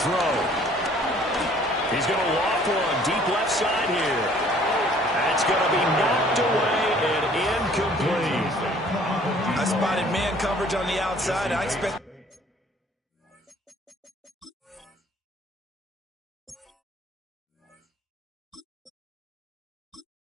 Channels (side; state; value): both; normal; correlation 0.56